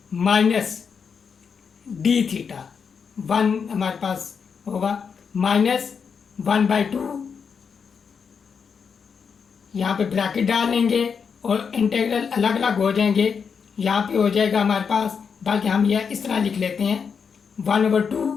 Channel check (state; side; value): quieter; right; 6.2 dB